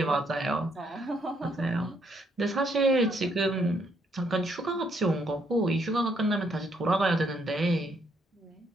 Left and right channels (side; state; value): both; normal; correlation 0.72